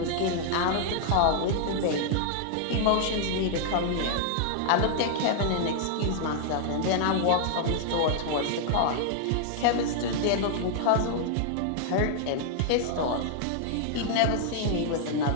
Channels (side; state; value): both; different; correlation -0.01